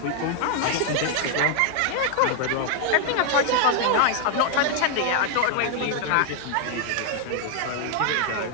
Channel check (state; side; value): different; both; correlation 0.00